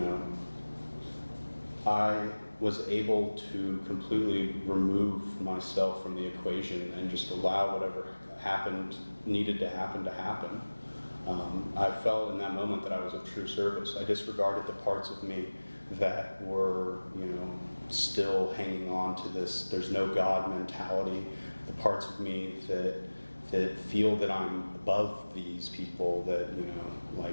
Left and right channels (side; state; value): both; inverted; correlation -1.00